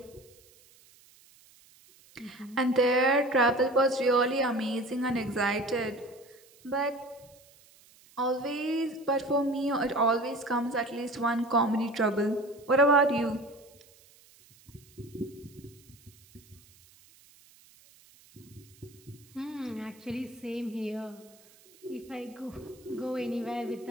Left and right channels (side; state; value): right; noise; hiss, 27 dB below the sound